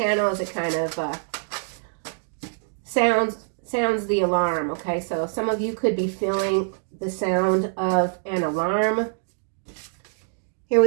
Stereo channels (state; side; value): silent; left; digital silence